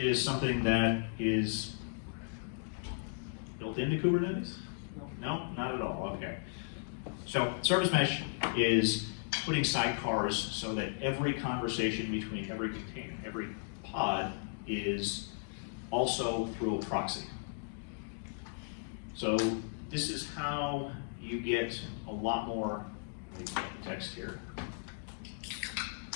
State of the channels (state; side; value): silent; right; digital silence